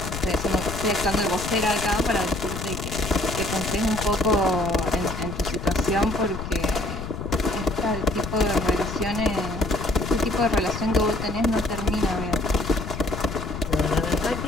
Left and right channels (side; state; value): left; noise; rumble, 7 dB below the sound